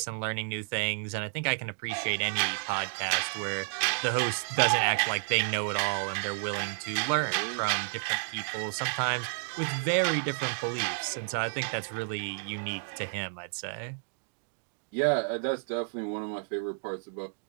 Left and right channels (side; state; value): left; silent; digital silence